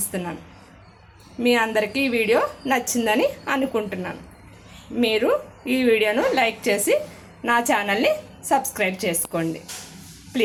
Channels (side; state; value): both; identical; correlation 1.00